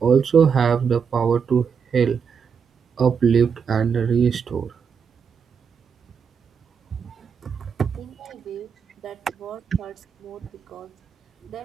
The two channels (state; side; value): quieter; left; 6.5 dB